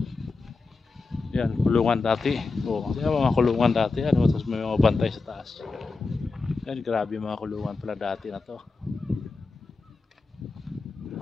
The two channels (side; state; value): right; quieter; 3.9 dB